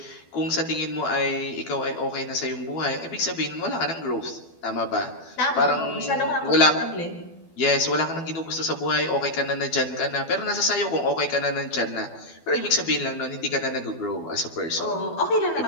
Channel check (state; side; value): late; right; 12 ms